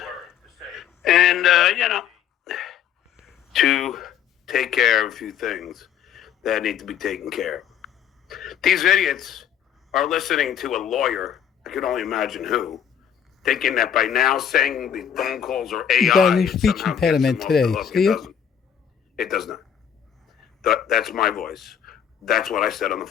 and to take care of a few things that need to be taken care of. These idiots are listening to a lawyer, I can only imagine who, thinking that by now saying the phone calls are AI, He's got a new speech impediment today. See it? It does not. That's my voice. That's what I said on the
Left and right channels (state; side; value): quieter; right; 8.8 dB